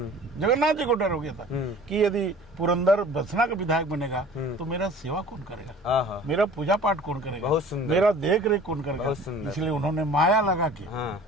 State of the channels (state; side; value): normal; both; correlation 0.45